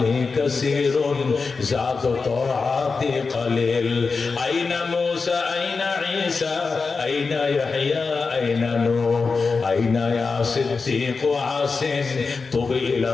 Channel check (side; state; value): right; quieter; 4.5 dB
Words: কাসীরুন যাত তাআতি কলিল আইনা মূসা আইনা ঈসা আইনা ইয়াহইয়া আইনা নূহ আইনা ইয়া সিদ্দিক আসিন তুবি